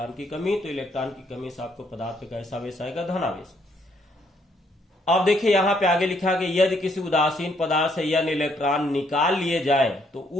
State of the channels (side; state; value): both; normal; correlation 0.70